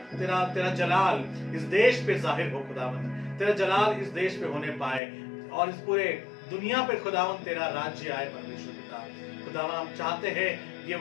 तेरा तेरा जलाल इस देश पे जाहिर हो खुदावन, तेरा जलाल इस देश पे होने पाए और इस पूरे दुनिया पे खुदावन तेरा राज्य आए। परमेश्वर पिता खुदावन हम चाहते हैं ये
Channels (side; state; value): right; drops out; at 5.0 s